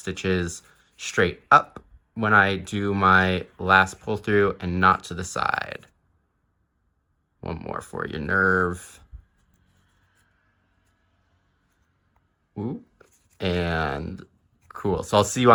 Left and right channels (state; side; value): identical; both; correlation 1.00